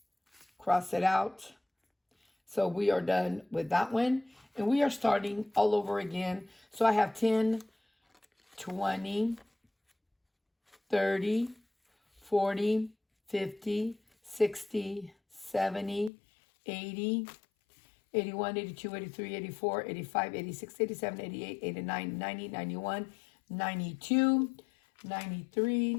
cross it out. So we are done with that one. And we are starting all over again. So I have 10, 20, 30, 40, 50, 60, 70, 80, 81, 82, 83, 84, 85, 86, 87, 88, 89, 90, 91, 92, 93,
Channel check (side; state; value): right; drops out; at 16.1 s